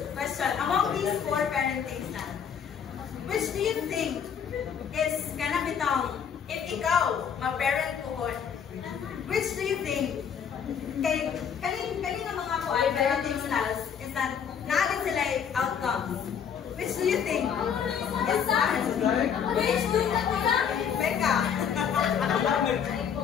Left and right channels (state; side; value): quieter; right; 7.6 dB